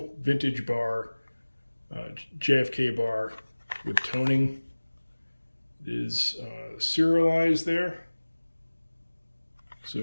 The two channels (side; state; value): both; inverted; correlation -1.00